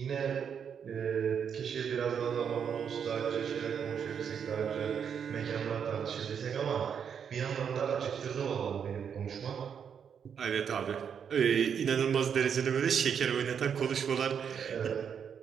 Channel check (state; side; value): quieter; left; 7.5 dB